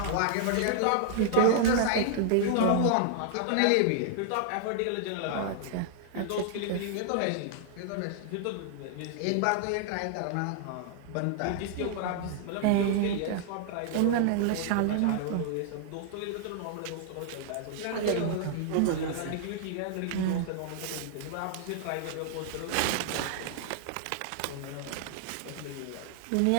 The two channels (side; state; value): both; different; correlation -0.01